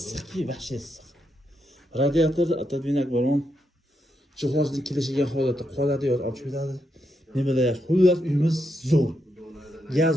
вообще issiq. Radiator atadvinak bor. Jihozning kelishiga holatda qoladi yoki olib chiqadi. Ne bilay, xullas uyimiz zo'r. Gaz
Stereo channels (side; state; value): both; normal; correlation 0.82